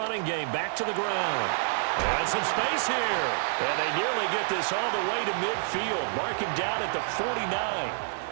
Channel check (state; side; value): silent; left; digital silence